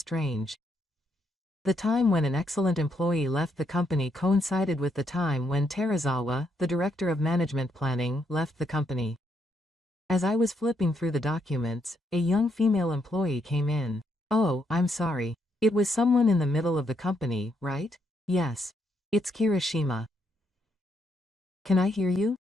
The time when an excellent employee left the company coincided with the time when Terazawa, the director of management planning, left the company. As I was flipping through the documents, a young female employee came in. Oh, I'm sorry. It was someone in the middle of the company, right? Yes. It's Kirishima. Can I hear you?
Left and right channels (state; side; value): normal; both; correlation 0.76